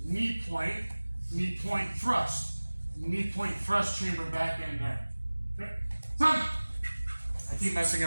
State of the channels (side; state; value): both; inverted; correlation -1.00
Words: knee point thrust. Knee point thrust, chamber back and down. Okay. Sound. I keep messing